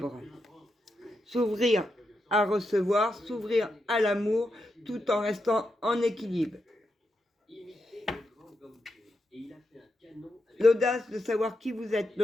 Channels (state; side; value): normal; both; correlation 0.85